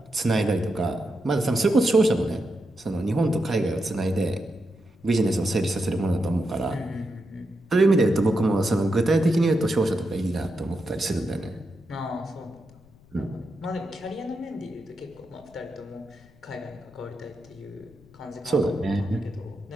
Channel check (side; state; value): left; noise; rumble, 27 dB below the sound